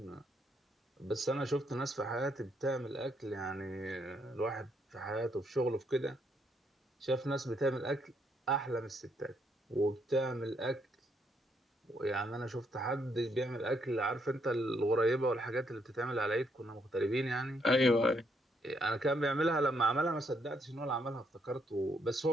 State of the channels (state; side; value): normal; both; correlation 0.74